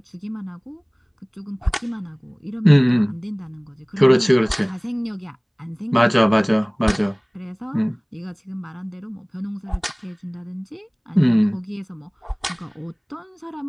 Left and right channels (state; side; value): identical; both; correlation 1.00